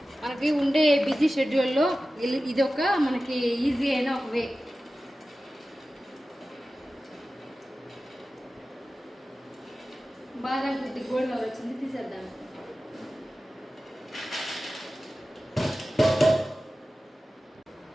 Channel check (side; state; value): both; normal; correlation 0.95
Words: మనకి ఉండే బిజీ షెడ్యూల్లో ఇది ఒక మనకి ఈజీ అయిన ఒక వే. బాగా కొద్ది గోల్డ్ కలర్ వచ్చింది, తీసేద్దాం.